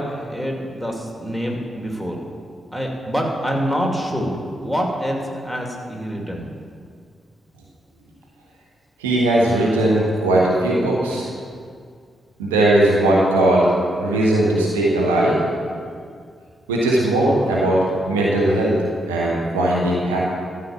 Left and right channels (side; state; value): both; normal; correlation 0.75